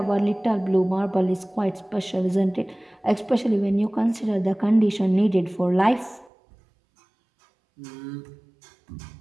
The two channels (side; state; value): left; drops out; at 6.3 s